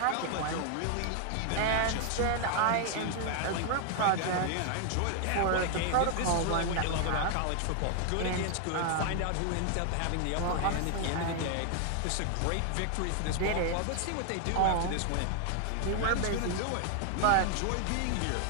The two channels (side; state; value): both; different; correlation 0.00